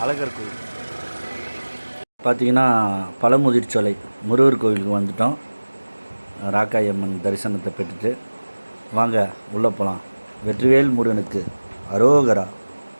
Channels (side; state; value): both; inverted; correlation -1.00